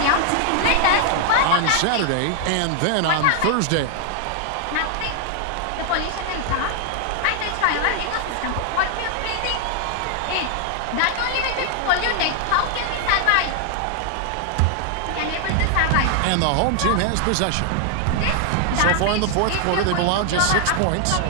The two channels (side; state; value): both; different; correlation 0.00